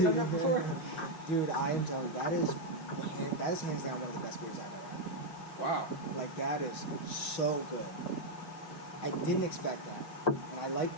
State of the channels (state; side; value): late; right; 6.0 ms